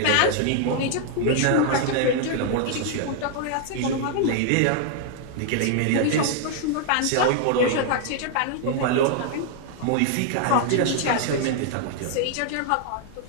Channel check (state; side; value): different; both; correlation 0.00